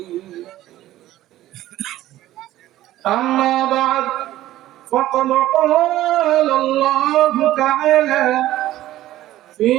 أما بعد، فقد قال الله تعالى في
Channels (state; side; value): quieter; left; 14.6 dB